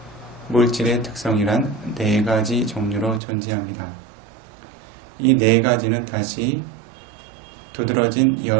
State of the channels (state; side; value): drops out; left; at 3.2 s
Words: 물질의 특성이란 4가지 종류로 존재합니다. 이 4가지는 다시 두드러진